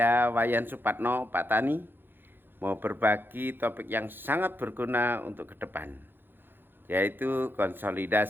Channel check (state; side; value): late; left; 0.099 ms